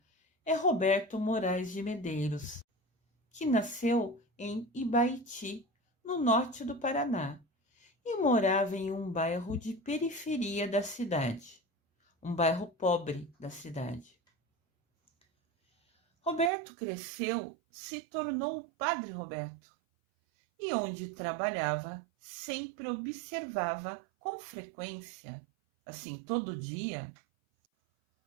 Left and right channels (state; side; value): drops out; left; at 16.5 s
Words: é Roberto Moraes de Medeiros, que nasceu em Ibaiti, no norte do Paraná. e morava em um bairro de periferia da cidade, um bairro pobre da cidade. Roberto cresceu, se tornou o Padre Roberto, e onde trabalhava, sempre observava com frequência, assim todo dia,